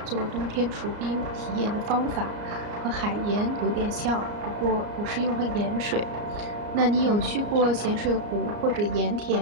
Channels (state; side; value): late; left; 34 ms